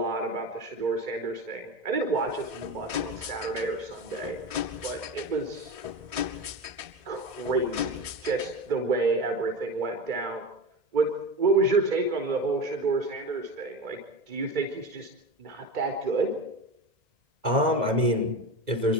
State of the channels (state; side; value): late; left; 1.6 ms